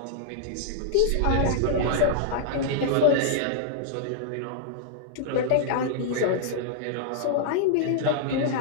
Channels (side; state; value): both; different; correlation -0.02